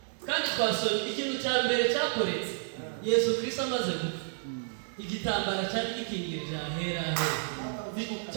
kandi twasomye ikintu cya mbere cyakoretse Yesu Kristo amaze gupfa. Igitambara cyari gikingirije ahera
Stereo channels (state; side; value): silent; left; digital silence